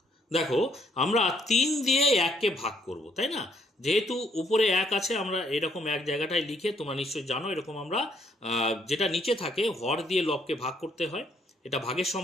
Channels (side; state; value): both; normal; correlation 0.68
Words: দেখো আমরা 3 দিয়ে 1কে ভাগ করব, তাই না? যেহেতু উপরে 1 আছে, আমরা এরকম এক জায়গাটায় লিখে, তোমরা নিশ্চয়ই জানো এরকম আমরা যেটা নিচে থাকে হর দিয়ে লবকে ভাগ করতে হয়, এটা ভাগের